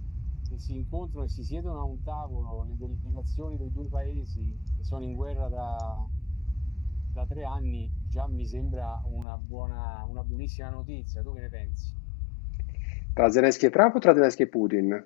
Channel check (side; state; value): right; drops out; at 9.2 s